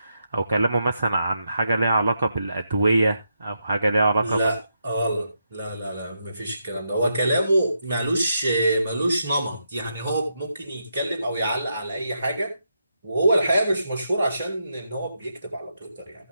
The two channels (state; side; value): inverted; both; correlation -0.83